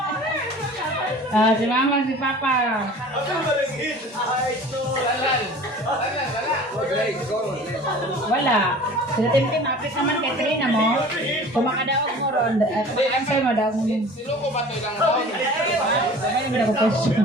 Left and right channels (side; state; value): both; normal; correlation 0.43